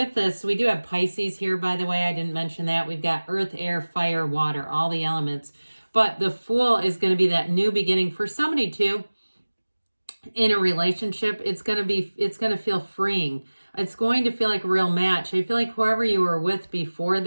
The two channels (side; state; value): both; inverted; correlation -1.00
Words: this, we do have Pisces here, by the way. I didn't mention that. We've got earth, air, fire, water, all the elements. But the Fool is going to be that new beginning for somebody too. In a relationship, it's going to feel freeing. It's going to feel like a real match. I feel like whoever you were with before